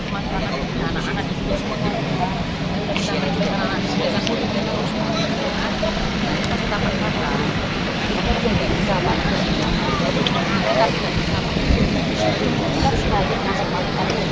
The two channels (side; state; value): both; identical; correlation 1.00